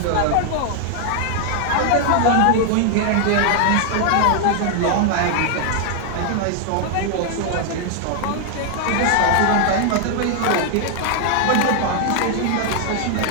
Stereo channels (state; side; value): different; both; correlation 0.00